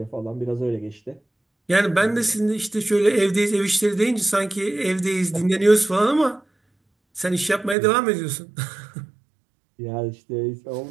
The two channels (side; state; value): left; drops out; at 7.8 s